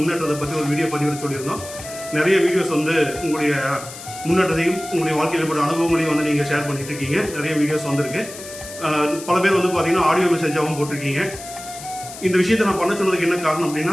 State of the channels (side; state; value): left; noise; hiss, 13 dB below the sound